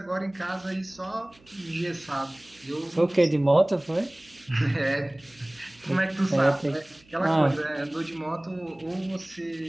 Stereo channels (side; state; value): right; noise; hum, 28 dB below the sound